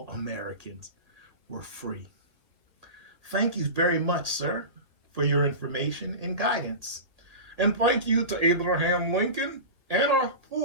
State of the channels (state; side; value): late; left; 1.9 ms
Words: Americans were free. Thank you very much, sir, for your information and guidance. And thank you to Abraham Lincoln and our